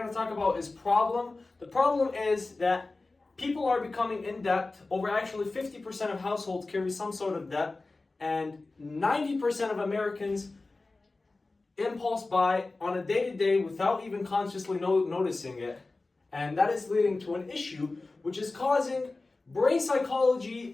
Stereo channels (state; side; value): quieter; right; 3.4 dB